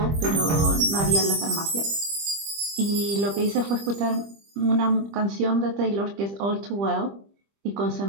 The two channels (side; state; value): left; late; 25 ms